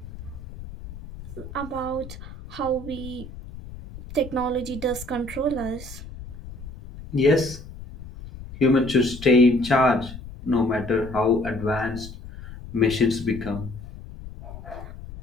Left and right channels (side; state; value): left; noise; rumble, 13 dB below the sound